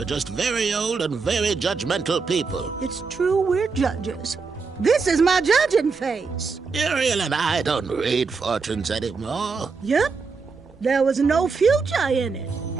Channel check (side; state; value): left; quieter; 4.8 dB